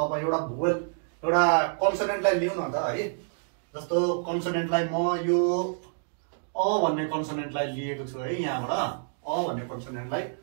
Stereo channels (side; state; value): left; silent; digital silence